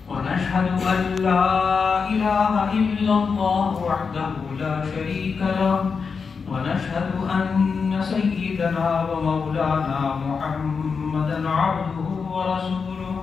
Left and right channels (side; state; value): right; quieter; 5.4 dB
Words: ونشهد أن لا إله إلا الله وحده لا شريك له ونشهد أن سيدنا ومولانا محمدا عبده ورسوله